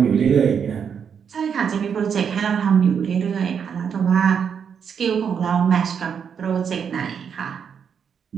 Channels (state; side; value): quieter; left; 7.2 dB